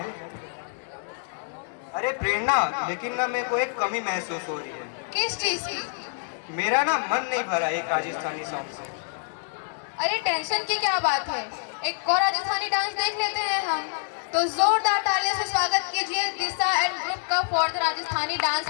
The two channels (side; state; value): right; silent; digital silence